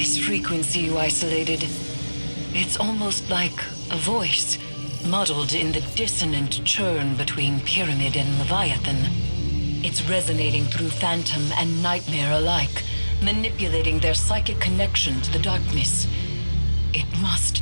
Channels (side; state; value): both; inverted; correlation -1.00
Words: frequency you isolated, it's almost like a voice, muddled in the dissonant churn between Pyramid and Leviathan. It's resonating through Phantom and Nightmare alike, manipulating their psychic connection to the darkness. It must